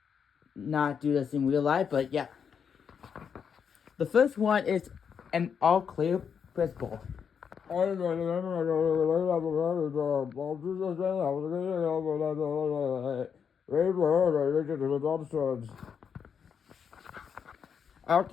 not do this in real life. But yeah, the first one is an all clear principle. At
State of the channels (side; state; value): right; quieter; 7.0 dB